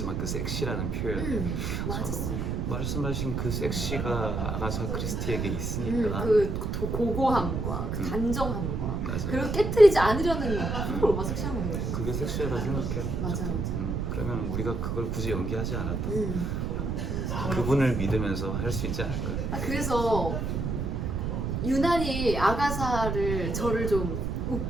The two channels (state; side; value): noise; right; rumble, 1 dB below the sound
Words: 그 섹시라는 표현 맞았어. 말씀하신 그 섹시가 아가사 크리스티에게 있으니까 그 고고함과 그 단정함과 맞아요. 그리고 깨트리지 않으려는 그걸 얼마나 섹시한 거예요. 그게 섹시하다 생각해요. 맞아, 저도. 맞아. 그러면 우리가 그걸 굳이 연기하지 않아도 음. 그분을 믿으면서 할 수 있지 않을까요? 그래서 유난히 아가사를 저를 좀